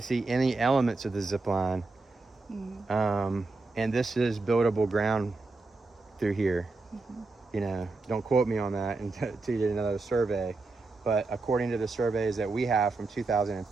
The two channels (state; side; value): quieter; left; 3.5 dB